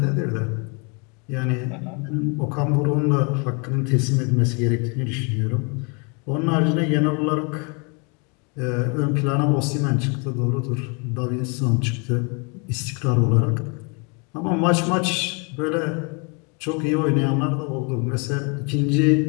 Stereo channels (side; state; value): right; quieter; 33.7 dB